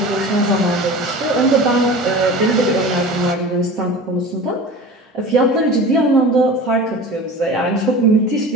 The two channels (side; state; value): both; normal; correlation 0.36